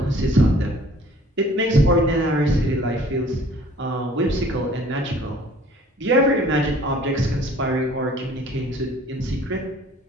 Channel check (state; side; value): normal; both; correlation 0.53